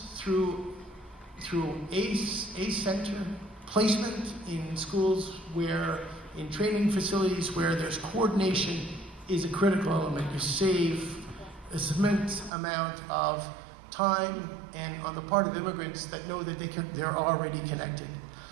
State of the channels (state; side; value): drops out; left; at 12.5 s